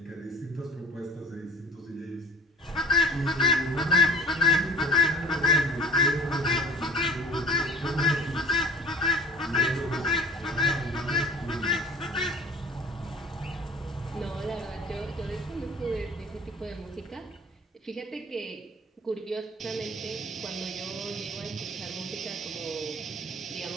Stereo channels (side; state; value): both; normal; correlation 0.46